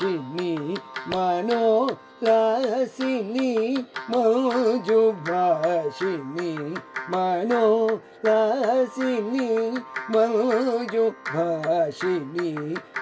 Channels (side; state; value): both; identical; correlation 1.00